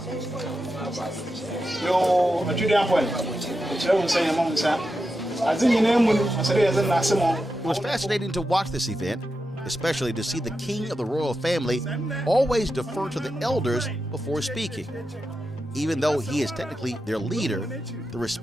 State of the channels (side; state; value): both; normal; correlation 0.89